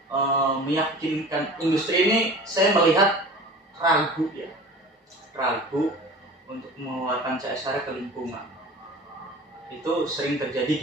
meyakinkan industri ini saya melihat ragu untuk mengeluarkan CSR ke lingkungan. Itu sering terjadi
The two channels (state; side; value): normal; both; correlation 0.40